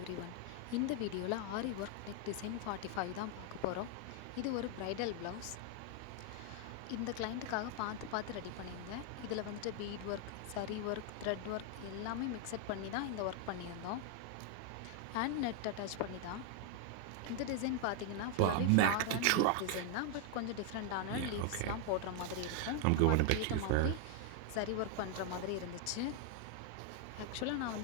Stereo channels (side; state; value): both; different; correlation 0.00